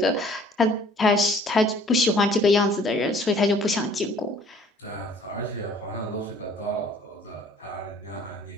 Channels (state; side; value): normal; both; correlation 0.55